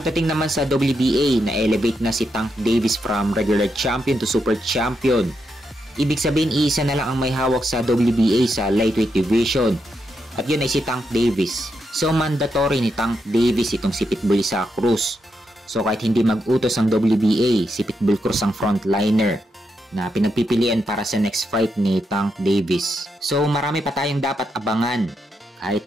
naman sa WBA, na-elevate na si Tank Davis from regular champion to super champion. Ibig sabihin, isa na lang ang may hawak sa WBA sa lightweight division. At yun ay si Tank Davis. So mandatory ni Tank Davis itong si Pitbull Isaac Cruz. So kahit hindi mag-utos ang WBA, si Pitbull Cruz ang frontliner na pinagpipilian para sa next fight ni Tank Davis. So marami pa tayong dapat abangan. Kahit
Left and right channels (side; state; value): both; normal; correlation 0.82